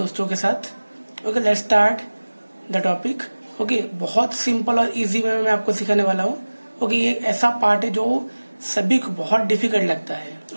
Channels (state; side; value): inverted; both; correlation -1.00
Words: दोस्तों के साथ. Okay, let's start the topic. Okay, बहुत सिंपल और इजी वे में मैं आपको सिखाने वाला हूँ. ओके, ये ऐसा पार्ट है जो सभी को बहुत डिफिकल्ट लगता है.